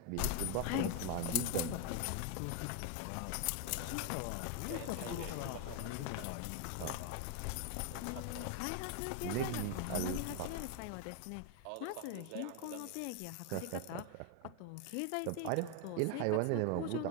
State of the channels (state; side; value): different; both; correlation 0.01